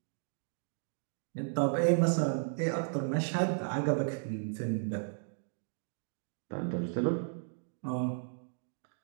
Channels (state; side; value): silent; left; digital silence